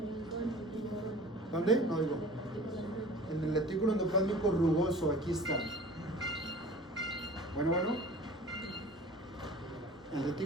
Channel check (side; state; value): both; normal; correlation 0.43